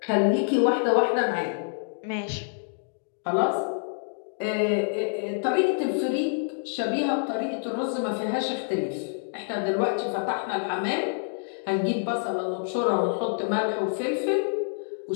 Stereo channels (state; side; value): silent; right; digital silence